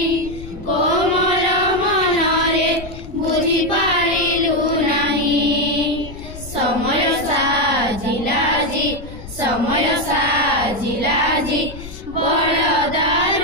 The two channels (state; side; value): noise; left; rumble, 14 dB below the sound